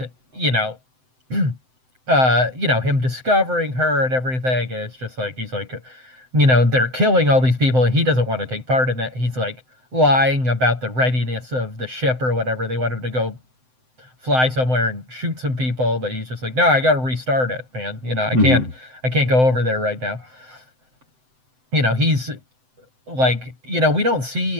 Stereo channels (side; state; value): left; late; 7.8 ms